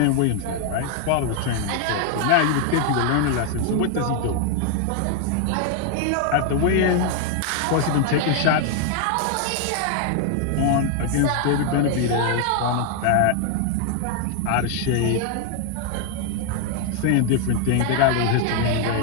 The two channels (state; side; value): different; both; correlation 0.00